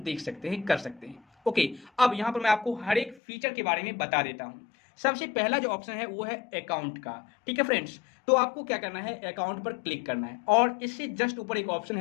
सकते हैं, कर सकते हैं। ओके, अब यहाँ पर मैं आपको हर एक फीचर के बारे में बता देता हूँ। सबसे पहला जो ऑप्शन है वो है अकाउंट का। ठीक है फ्रेंड्स, तो आपको क्या करना है, अकाउंट पर क्लिक करना है और इससे जस्ट ऊपर एक ऑप्शन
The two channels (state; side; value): drops out; right; at 3.2 s